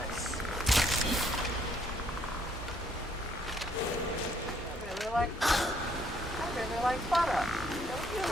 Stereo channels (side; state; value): both; normal; correlation 0.68